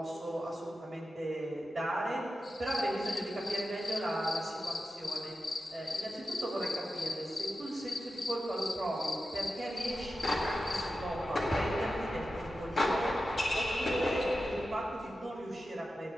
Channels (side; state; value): both; normal; correlation 0.91